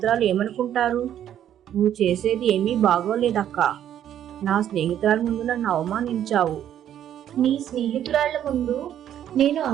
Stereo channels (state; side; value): quieter; left; 10.6 dB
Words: ఏమనుకుంటారు? నువ్వు చేసేది ఏమీ బాగోలేదక్కా. నా స్నేహితురాలు ముందు నన్ను అవమానించావు. నీ స్నేహితురాళ్ల ముందు నేను